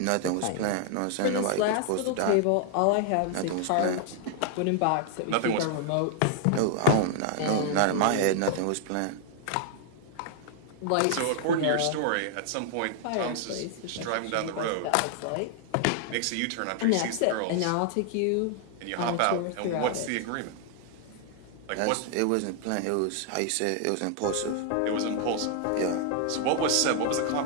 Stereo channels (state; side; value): different; both; correlation 0.00